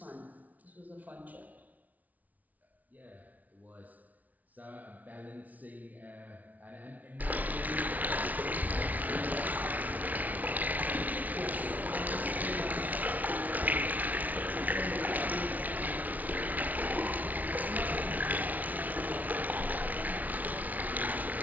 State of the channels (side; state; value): left; late; 0.075 ms